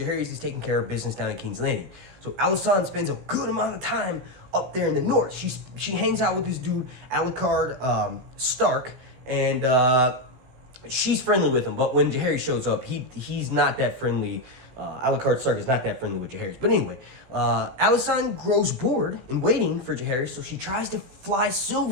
is taking care of business down in King's Landing. So Alysanne spends a good amount of time up there in the north. She hangs out with this dude, Alucard Stark, and she's friendly with him. But when Jaehaerys shows up, he's not that friendly. Alucard Stark is not that friendly with Jaehaerys. But anyway, Alysanne grows bored in waiting for Jaehaerys, so she tries to fly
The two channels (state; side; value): late; left; 16 ms